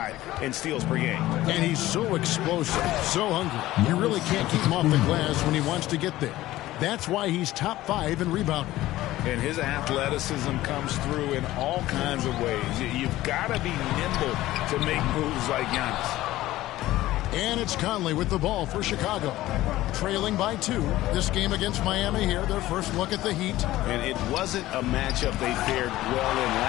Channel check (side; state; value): right; quieter; 16.0 dB